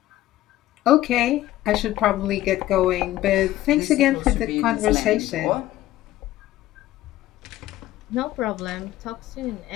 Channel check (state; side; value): quieter; right; 15.0 dB